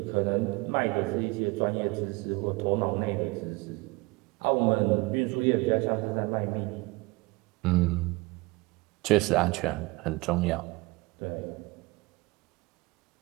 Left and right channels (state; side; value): quieter; left; 24.4 dB